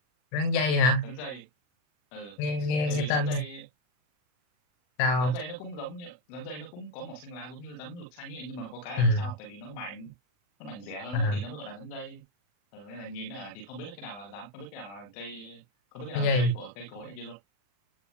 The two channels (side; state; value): right; late; 40 ms